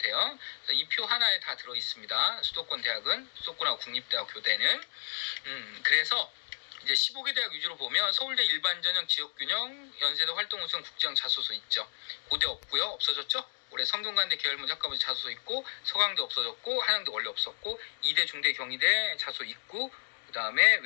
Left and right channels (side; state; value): right; silent; digital silence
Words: 이 표 하나에 다 들어 있습니다. 수도권 대학은, 수도권하고 국립대학 교대는. 그래서 이제 15개 대학 위주로 보면 서울대 일반전형 지역균형, 연세대 활동우선 국제형 자소서 있죠. 고대 없고요. 없어졌죠? 올해 성균관대 계열문 학과부 자소서 있고, 서강대 없어졌고, 한양대 원래 없었고, 이대, 중대, 경희대 자소 있고, 그 다음에